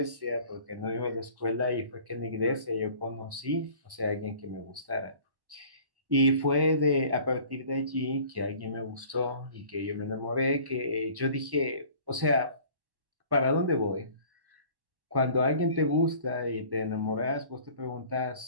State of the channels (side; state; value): left; late; 1.1 ms